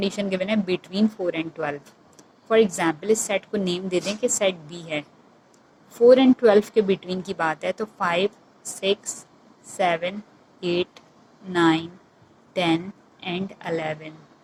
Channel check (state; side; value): identical; both; correlation 1.00